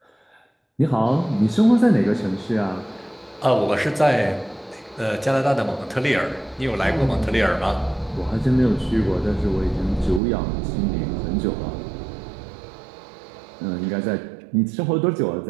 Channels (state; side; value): drops out; left; at 10.2 s